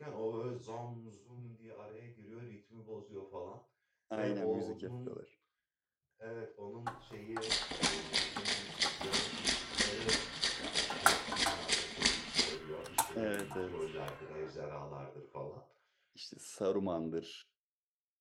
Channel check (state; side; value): identical; both; correlation 1.00